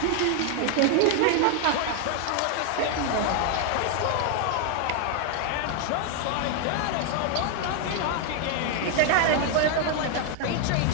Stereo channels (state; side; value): different; both; correlation 0.00